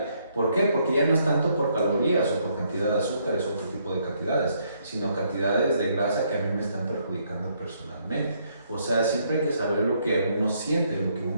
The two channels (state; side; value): inverted; both; correlation -0.71